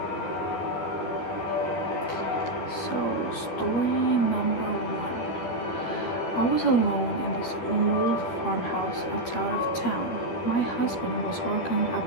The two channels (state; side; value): late; right; 12 ms